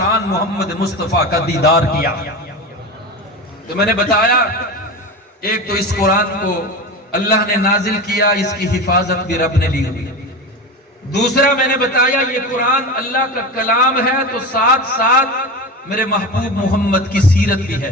محمد مصطفیٰ کا دیدار کیا۔ تو میں نے بتایا ایک تو اس قرآن کو اللہ نے نازل کیا، اس کی حفاظت بھی رب نے لی ہوئی۔ دوسرا میں نے بتایا یہ قرآن اللہ کا کلام ہے تو ساتھ ساتھ میرے محبوب محمد کی سیرت بھی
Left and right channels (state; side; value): normal; both; correlation 0.26